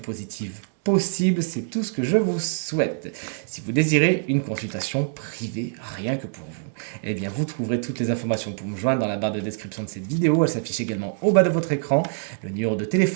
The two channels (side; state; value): left; silent; digital silence